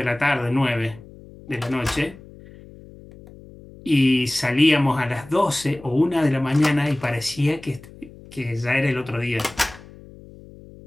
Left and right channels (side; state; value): left; noise; hum, 20 dB below the sound